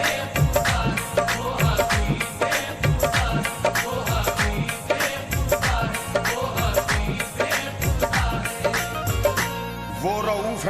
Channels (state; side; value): identical; both; correlation 1.00